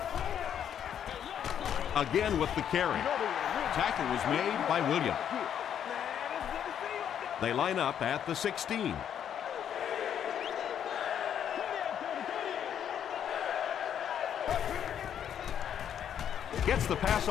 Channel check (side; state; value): right; quieter; 9.2 dB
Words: Again with the carry. Tackle was made by Williams. They line up at the 16. Gets the pass